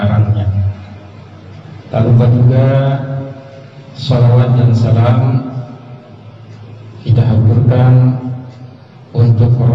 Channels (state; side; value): identical; both; correlation 1.00